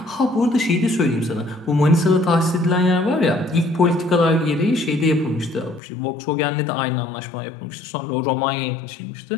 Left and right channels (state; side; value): drops out; right; at 5.8 s